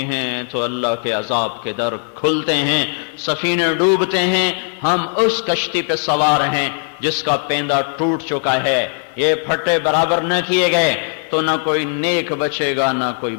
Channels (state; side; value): silent; right; 58 dB below the other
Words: ہیں تو اللہ کے عذاب کے در کھلتے ہیں، سفینے ڈوبتے ہیں، ہم اس کشتی پہ سوار ہیں جس کا پیندہ ٹوٹ چکا ہے، یہ پھٹے برابر نہ کیے گئے تو نہ کوئی نیک بچے گا نہ کوئی